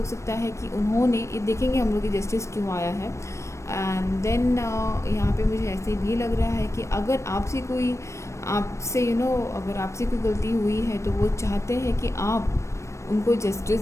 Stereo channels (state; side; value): late; right; 0.14 ms